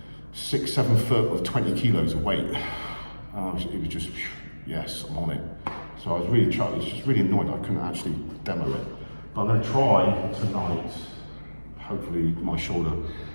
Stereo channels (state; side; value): inverted; both; correlation -1.00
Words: 6-7 foot of 20 kilos of weight. It was just, yes, I'm on it. So I was really just really annoyed I couldn't actually demo it. But I'm going to try tonight, hopefully my shoulder.